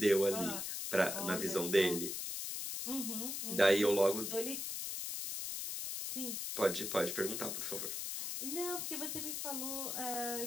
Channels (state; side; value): noise; left; hiss, 3 dB below the sound